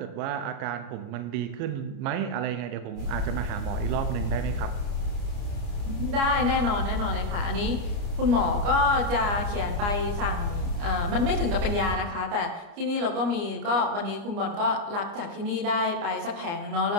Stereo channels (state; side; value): late; left; 29 ms